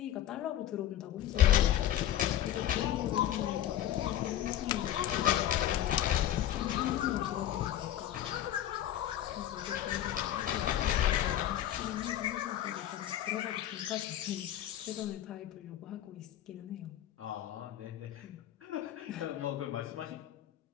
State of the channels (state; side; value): quieter; right; 12.1 dB